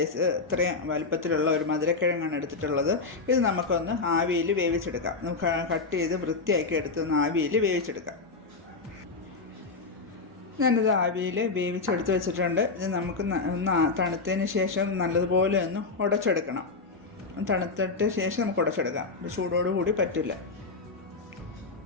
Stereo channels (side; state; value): right; quieter; 4.0 dB